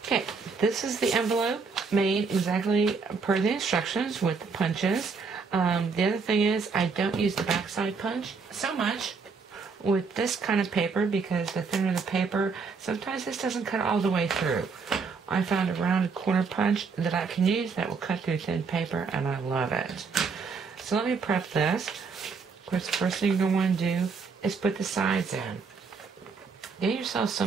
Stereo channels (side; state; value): left; quieter; 5.0 dB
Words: Okay, this is the envelope made exactly per the instructions with the punches. The other thing is I don't use the backside punch so much with this kind of paper, because the thinner the paper, sometimes this doesn't cut all the way through. I found a rounded corner punch that I can use that will cut through thin paper, and I love it. So let me prep this. Of course, the first thing you're going to want to do is put the sides in. Get yourself